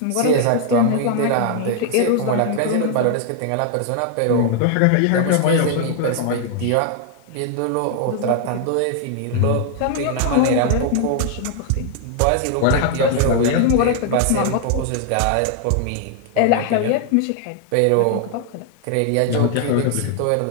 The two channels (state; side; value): different; both; correlation 0.00